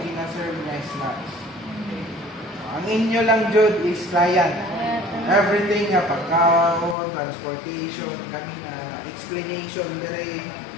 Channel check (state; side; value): drops out; right; at 7.0 s